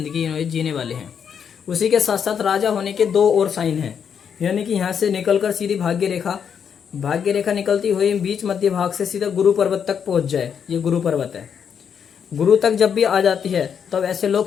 जीने वाले हैं। उसी के साथ साथ राजा होने के 2 और साइन हैं। यानी कि यहाँ से निकलकर सीधी भाग्य रेखा निकलती हुई बीच मध्य भाग से सीधा गुरु पर्वत तक पहुंच जाए। ये गुरु पर्वत है। गुरु तक जब भी आ जाती है तब ऐसे लोग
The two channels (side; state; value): right; quieter; 7.5 dB